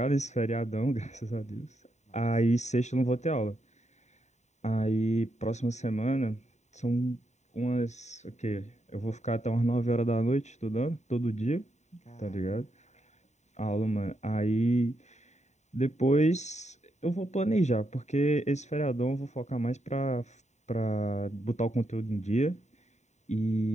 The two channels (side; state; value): right; late; 0.34 ms